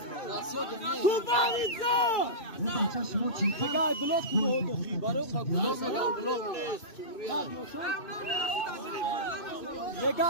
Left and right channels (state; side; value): late; right; 2.6 ms